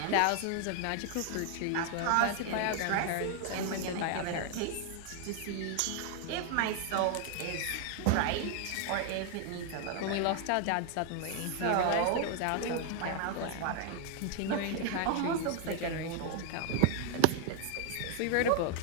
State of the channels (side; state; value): both; different; correlation 0.00